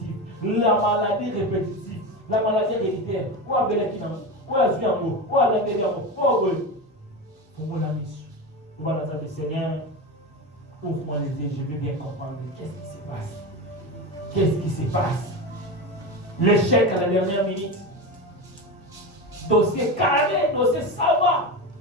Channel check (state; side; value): normal; both; correlation 0.22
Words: la maladie répétitive, la maladie héréditaire, ou à Belekina, ou à Zuyamo, ou à la Béliamo, ou à pour mon ami, nous allons dire, Seigneur, ouvre-moi les yeux, je veux bien comprendre qu'est-ce qui se passe. Qu'est-ce qui se passe? L'échec à la dernière minute. Dossier carré, dossier savoir.